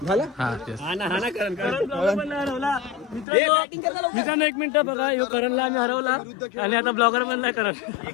मित्रांनो 1 मिनिट बघा. ह्यो करणला आम्ही हरवला आणि आता ब्लॉगर पण नाही करत.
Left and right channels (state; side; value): drops out; right; at 3.2 s